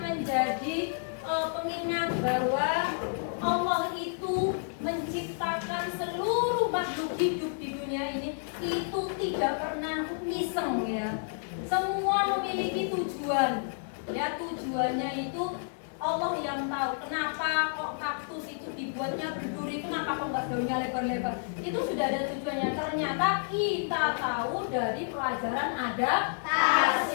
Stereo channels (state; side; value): silent; right; digital silence